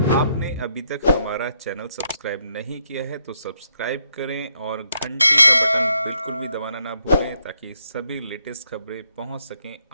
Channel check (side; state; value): both; inverted; correlation -0.76